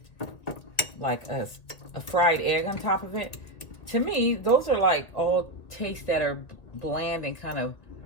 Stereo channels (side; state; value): right; late; 2.0 ms